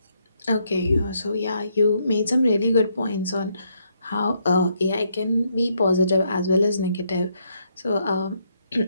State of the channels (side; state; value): both; inverted; correlation -0.75